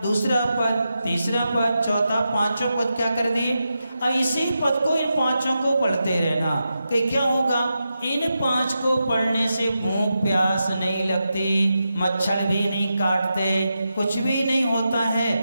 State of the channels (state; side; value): inverted; both; correlation -0.88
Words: दूसरा पद, तीसरा पद, चौथा, 5वां पद क्या कर दिए। अब इसी पद को, इन 5 को पढ़ते रहना कि क्या होगा? इन 5 को पढ़ने से भूख प्यास नहीं लगती, मच्छर भी नहीं काटते, कुछ भी नहीं होता है,